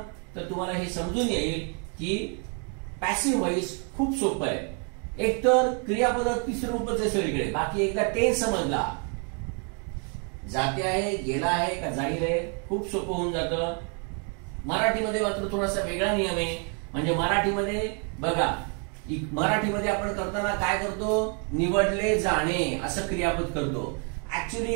तर तुम्हाला हे समजून येईल की पॅसिव्ह वॉइस खूप सोपं आहे. एकतर क्रियापद तिसरं रूपच आहे सगळीकडे. बाकी एकदा टेन्स समजला, जाते आहे, गेला आहे का जाईल आहे, खूप सोपं होऊन जातं. मराठीमध्ये मात्र थोडासा वेगळा नियम आहे. म्हणजे मराठीमध्ये बघा, मराठीमध्ये आपण करताना काय करतो, निवडले जाणे असं क्रियापद करतो. ऍक्च्युली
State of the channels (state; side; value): quieter; left; 38.9 dB